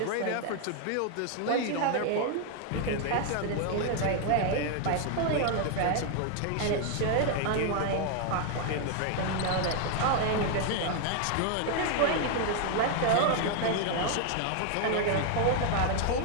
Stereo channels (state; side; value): different; both; correlation 0.00